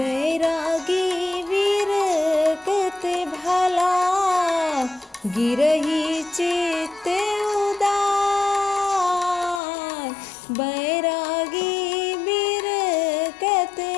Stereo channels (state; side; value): drops out; right; at 9.6 s